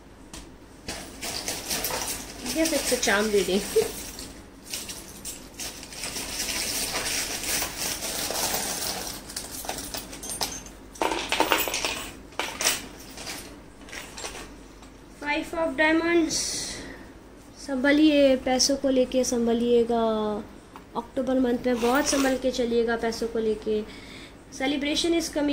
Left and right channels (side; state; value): both; identical; correlation 1.00